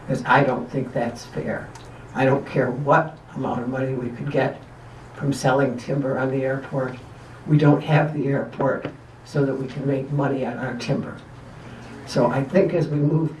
Because I don't think that's fair. I don't care what amount of money we could get from selling timber on the airport. We don't have the airport so that we can make money on our timber. So I think as we move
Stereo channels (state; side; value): identical; both; correlation 1.00